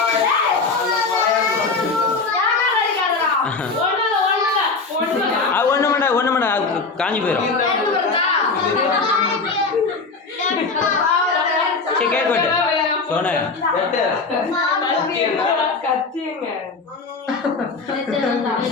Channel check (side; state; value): right; quieter; 4.1 dB